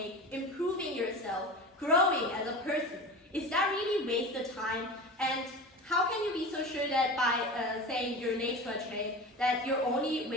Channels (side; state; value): both; normal; correlation 0.31